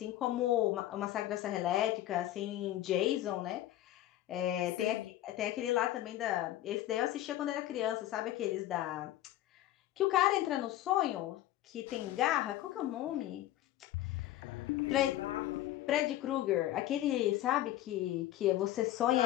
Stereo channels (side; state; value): right; quieter; 14.0 dB